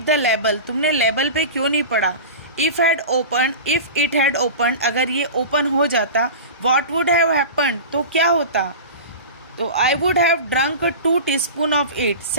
the label? तुमने लेबल पे क्यों नहीं पढ़ा? इफ इट हैड ओपन, अगर ये ओपन हो जाता, वॉट वुड हैव हैपन, तो क्या होता? तो I would have drunk 2 teaspoon of it,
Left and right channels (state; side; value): inverted; both; correlation -0.31